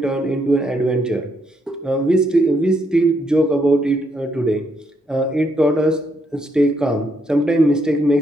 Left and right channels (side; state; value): both; normal; correlation 0.75